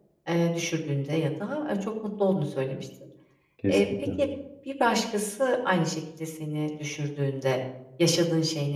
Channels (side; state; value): both; identical; correlation 1.00